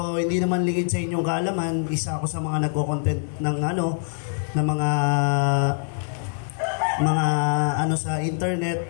hindi naman lingid sa inyong kaalaman. Isa ako sa mga nagko-content ng mga sa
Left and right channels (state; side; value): silent; right; 63 dB below the other